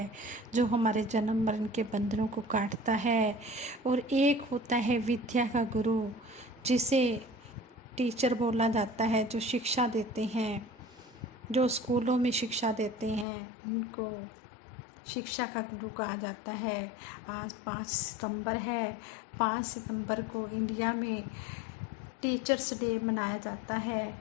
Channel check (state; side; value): drops out; right; at 13.2 s